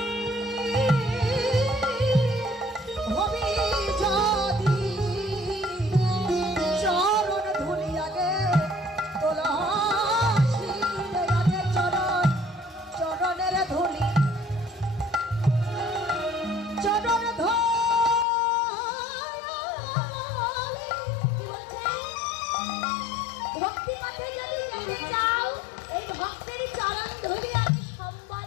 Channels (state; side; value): drops out; right; at 18.2 s